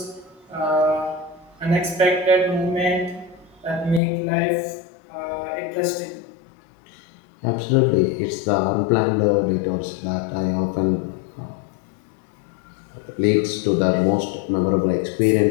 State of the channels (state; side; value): drops out; right; at 4.0 s